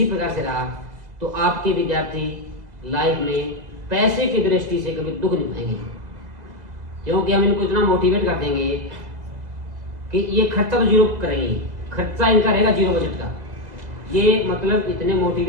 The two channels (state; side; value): late; left; 2.0 ms